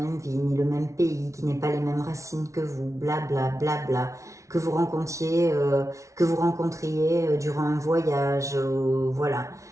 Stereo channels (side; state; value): left; late; 0.14 ms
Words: vie, ni le même pays, qui n'ait pas les mêmes racines que vous, blabla, blabla, que vous rencontriez durant un voyage, voilà.